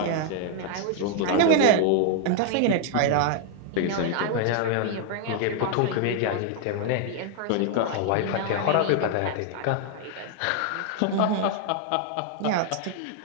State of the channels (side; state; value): both; different; correlation 0.00